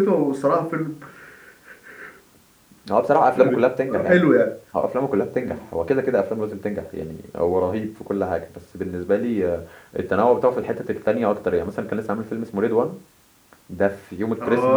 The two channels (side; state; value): both; identical; correlation 1.00